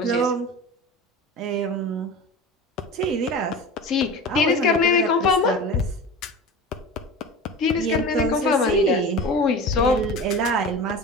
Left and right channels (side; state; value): both; normal; correlation 0.32